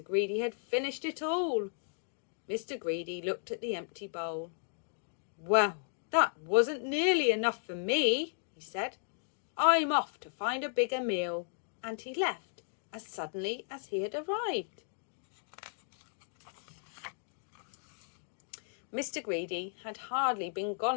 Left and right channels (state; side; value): silent; right; digital silence